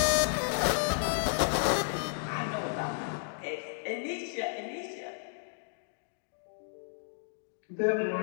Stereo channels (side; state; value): right; silent; digital silence